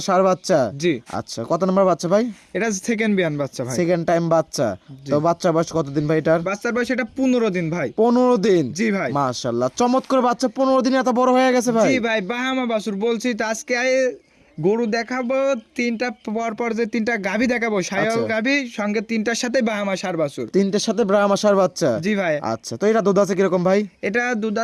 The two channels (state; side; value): identical; both; correlation 1.00